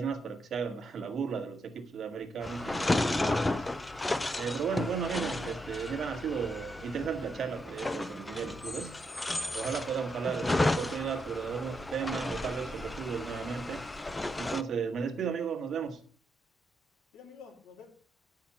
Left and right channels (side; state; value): both; normal; correlation 0.81